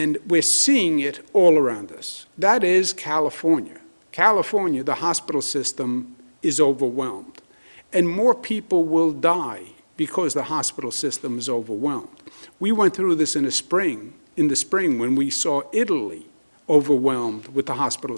we're seeing it all around us. That is California. California, the hospital system is overwhelmed. And more people will die because the hospital system is overwhelmed. We went through this in the spring when we saw Italy overwhelmed with the hospital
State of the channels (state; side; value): inverted; both; correlation -1.00